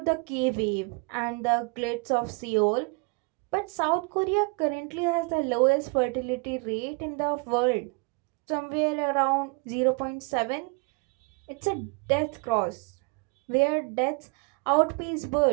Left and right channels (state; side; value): quieter; left; 31.5 dB